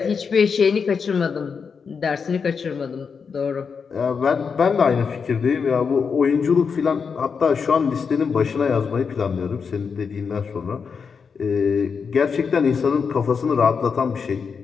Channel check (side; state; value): right; quieter; 5.8 dB